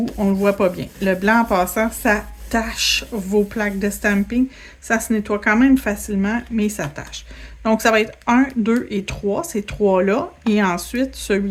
on le voit pas bien. Le blanc, en passant, ça tâche vos plaques de stamping. Ça se nettoie quand même facilement, mais ça tâche. Donc, ça va être 1, 2 et 3, ces trois-là, et ensuite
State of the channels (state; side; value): identical; both; correlation 1.00